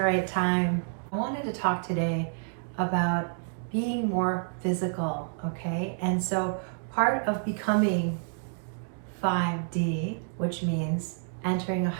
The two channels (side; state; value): left; silent; digital silence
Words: right time. I wanted to talk today about being more physical, okay? And so part of becoming 5D, which means entering a